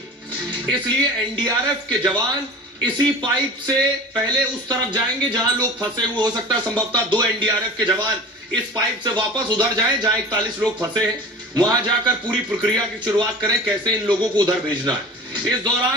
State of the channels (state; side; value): normal; both; correlation 0.37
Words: इसलिए एनडीआरएफ के जवान इसी पाइप से पहले उस तरफ जाएंगे जहां लोग फंसे हुए। हो सकता है संभवतः 2 एनडीआरएफ के जवान इस पाइप से वापस उधर जाएं जहां 41 लोग फंसे हैं, वहां जाकर पूरी प्रक्रिया की शुरुआत करें, कैसे इन लोगों को उधर भेजना है। इस